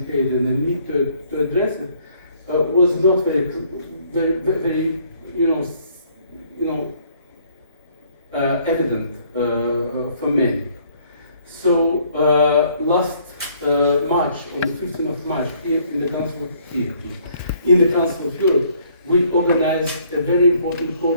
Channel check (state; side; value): inverted; both; correlation -0.63